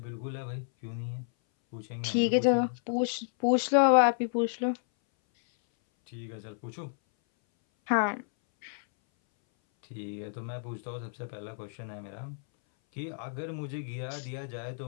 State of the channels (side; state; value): right; silent; 57 dB below the other